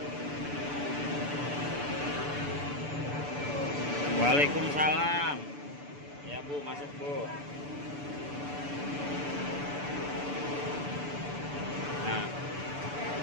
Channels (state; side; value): late; left; 6.9 ms